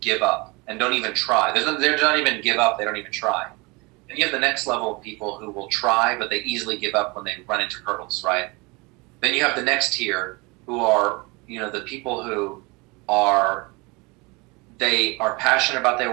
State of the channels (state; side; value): quieter; left; 26.7 dB